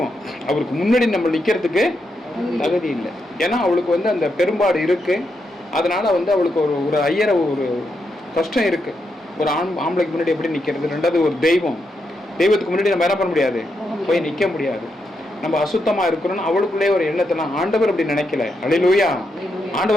அவருக்கு முன்னாடி நம்ம நிற்கிறதுக்கு தகுதி இல்லை. ஏன்னா அவளுக்கு அந்த பெரும்பாடு இருக்குது. அதனால் அவளுக்கு ஒரு ஐயரை ஒரு கஷ்டம் இருக்குது. ஒரு ஆம்பளைக்கு முன்னாடி எப்படி நிற்கிறது. ரெண்டாவது ஒரு தெய்வத்துக்கு முன்னாடி நம்ம என்ன பண்ண முடியாது, போய் நிற்க முடியாது. நம்ம அசுத்தமாக இருக்கிறோன்னு அவளுக்குள்ளே ஒரு எண்ணத்தெல்லாம் ஆண்டவர் அப்படி நினைக்கல. அல்லேலூயா.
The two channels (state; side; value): normal; both; correlation 0.83